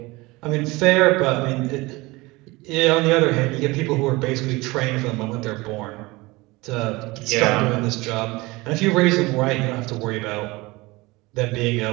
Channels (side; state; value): left; quieter; 22.3 dB